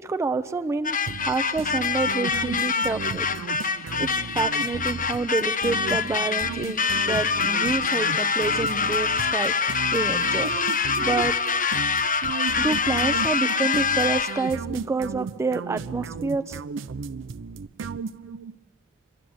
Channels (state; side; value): normal; both; correlation 0.12